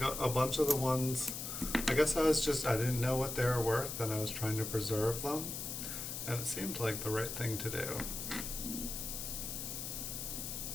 a bunch of the ones, I guess I didn't know what they were worth and I was trying to preserve them. And it seemed like the right thing to do.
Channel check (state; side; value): noise; left; hiss, 5 dB below the sound